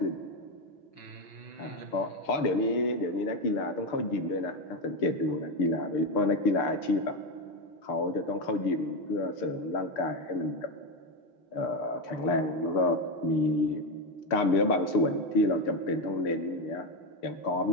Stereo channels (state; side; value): late; right; 6.7 ms